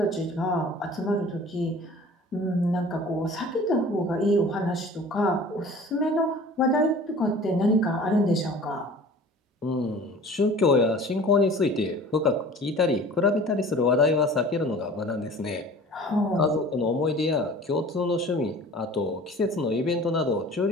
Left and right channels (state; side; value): normal; both; correlation 0.44